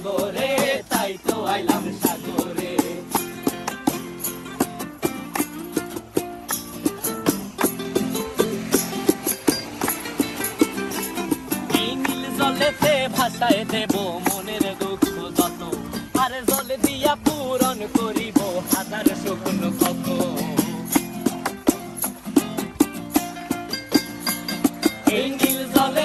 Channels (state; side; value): identical; both; correlation 1.00